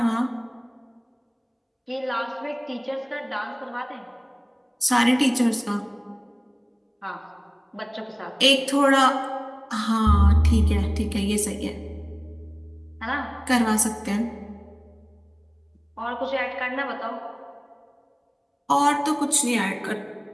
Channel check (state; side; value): identical; both; correlation 1.00